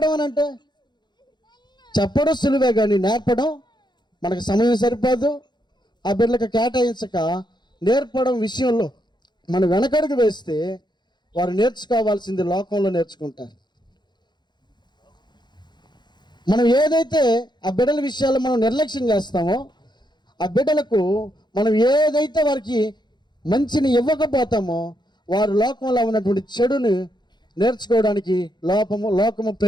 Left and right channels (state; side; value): late; right; 0.21 ms